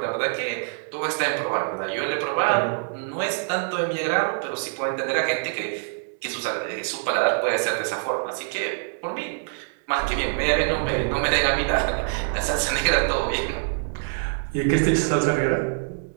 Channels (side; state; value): left; silent; digital silence